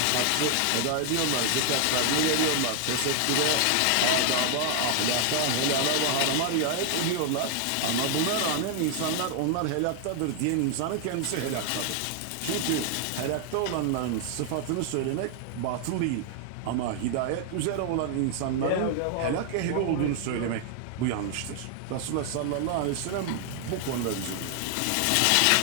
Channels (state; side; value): different; both; correlation 0.00